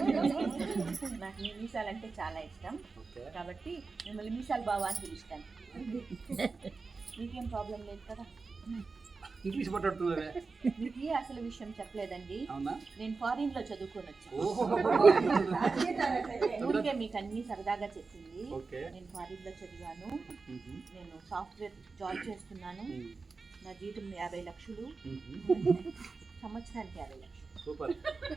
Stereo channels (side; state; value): left; quieter; 4.3 dB